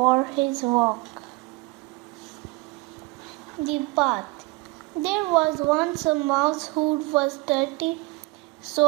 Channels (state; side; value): quieter; left; 24.1 dB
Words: his walk. The bath. There was once a mouse who was dirty, so